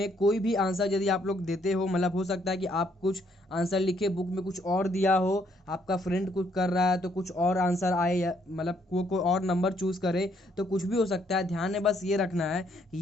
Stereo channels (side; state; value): both; normal; correlation 0.69